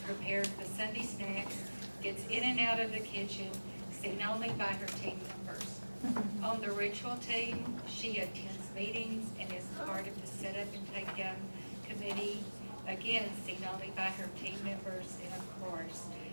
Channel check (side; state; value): both; inverted; correlation -1.00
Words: prepares the Sunday snacks, gets in and out of the kitchen, seen only by her team members. On the ritual team, she attends meetings and is part of the set up and take down committee, again seen only by her team members, and of course,